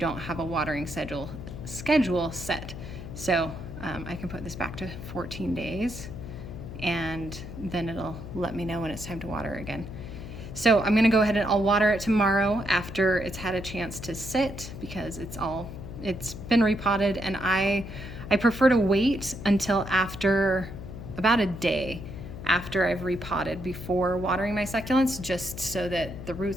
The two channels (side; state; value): left; noise; hum, 10 dB below the sound